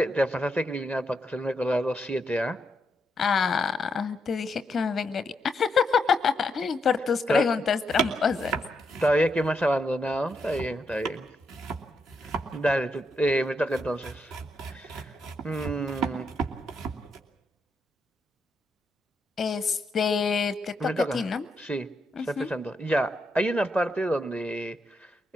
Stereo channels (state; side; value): normal; both; correlation 0.80